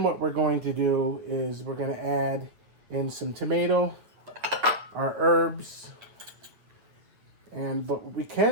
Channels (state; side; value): late; left; 9.1 ms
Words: what we're going to do is we're going to add in some tomato, our herbs, but what we